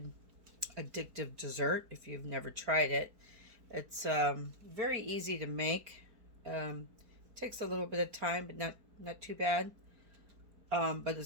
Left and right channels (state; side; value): late; left; 4.4 ms